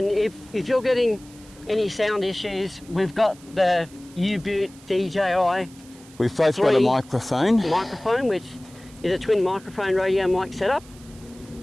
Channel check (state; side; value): noise; right; hiss, 23 dB below the sound